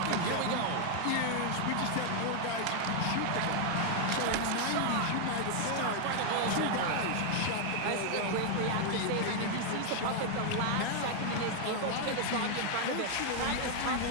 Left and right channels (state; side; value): different; both; correlation 0.00